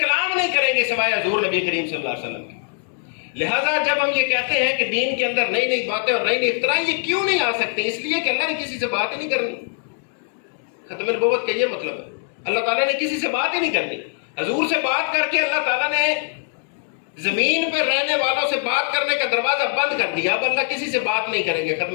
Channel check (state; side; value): silent; right; digital silence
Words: نہیں کریں گے سوائے حضور نبی کریم صلی اللہ علیہ وسلم کی۔ لہٰذا جب ہم یہ کہتے ہیں کہ دین کے اندر نئی نئی باتیں اور نئی نئی اختراع، یہ کیوں نہیں آ سکتے؟ اس لیے کہ اللہ نے کسی سے بات ہی نہیں کرنی۔ ختم نبوت کا یہ مطلب ہے، اللہ تعالیٰ نے کسی سے بات ہی نہیں کرنی۔ حضور سے بات کر کے اللہ تعالیٰ نے زمین پر رہنے والوں سے بات کرنے کا دروازہ بند کر دیا، اب اللہ کسی سے بات نہیں کریں گے۔